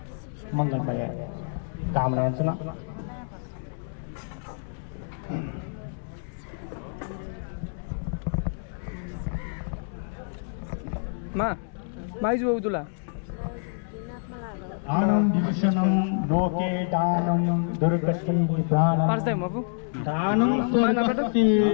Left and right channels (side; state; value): right; silent; digital silence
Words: Mangal Baya Kamayana Suna Maizu Udula. Danam Divishanam Loke Danam Durgati Nidhanam First time, Mafu. Danam